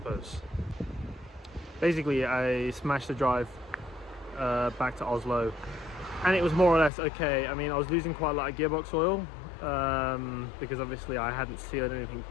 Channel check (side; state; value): right; drops out; at 6.9 s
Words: Basically, I smashed the drive back to Oslo, and it was more or less okay. I mean, I was losing quite a lot of gearbox oil because obviously I hadn't sealed anything